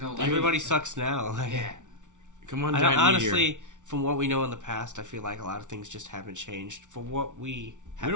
Everybody sucks now. Like, Yeah. Come on, I giant don't, meteor. honestly, from what we know in the past, I feel like a lot of things just haven't changed. For what we We haven't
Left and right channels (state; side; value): late; left; 0.86 ms